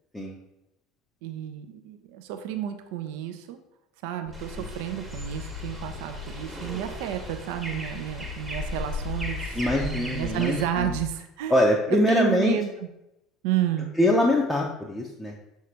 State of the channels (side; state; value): both; normal; correlation 0.52